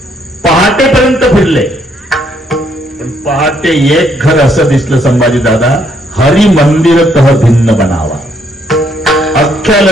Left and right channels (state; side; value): normal; both; correlation 0.70